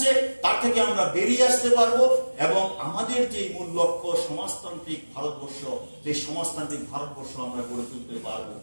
তার থেকে আমরা বেরিয়ে আসতে পারবো এবং আমাদের যে মূল লক্ষ্য সমাজতান্ত্রিক ভারতবর্ষ, সেই সমাজতান্ত্রিক ভারতবর্ষ আমরা গড়ে তুলতে পারবো।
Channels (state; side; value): inverted; both; correlation -1.00